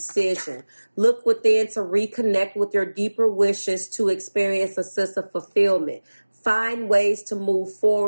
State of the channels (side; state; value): both; inverted; correlation -1.00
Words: Look within to reconnect with your deeper wishes to experience a sense of fulfillment. Find ways to move